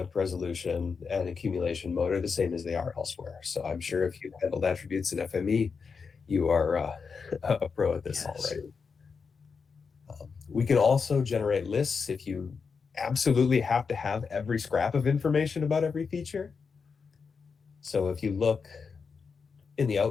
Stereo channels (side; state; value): right; quieter; 5.4 dB